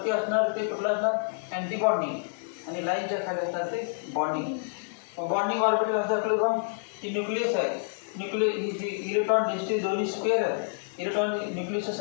असणार ते कुठलं असणार? Anti bonding. आणि लाईनच्या खाली असणार ते बॉन्डिंग. बॉन्डिंग ऑर्बिटल असं असलं का ती न्यूक्लियस आहे. ही जी इलेक्ट्रॉन डेन्सिटी दोन्ही स्क्वेअर आहे. इलेक्ट्रॉन न्यूक्लियसच्या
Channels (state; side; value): silent; right; digital silence